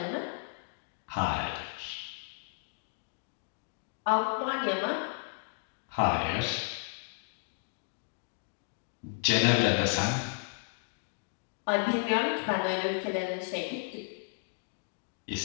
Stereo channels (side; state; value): right; silent; digital silence